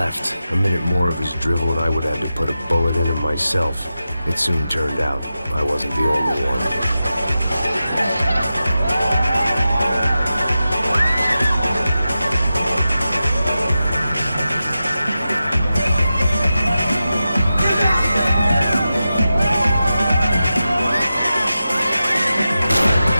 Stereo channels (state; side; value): inverted; both; correlation -0.92